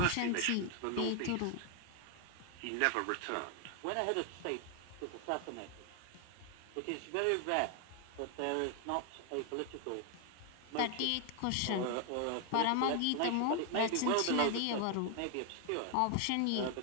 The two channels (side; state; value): both; different; correlation 0.01